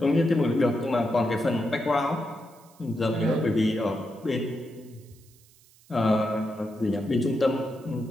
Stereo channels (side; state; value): right; noise; hiss, 28 dB below the sound